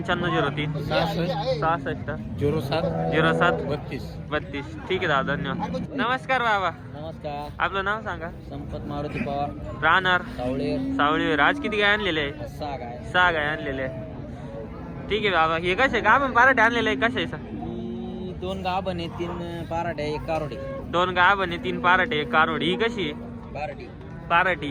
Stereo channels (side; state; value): both; identical; correlation 1.00